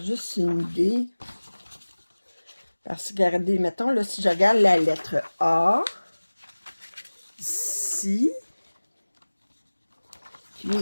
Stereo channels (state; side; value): inverted; both; correlation -1.00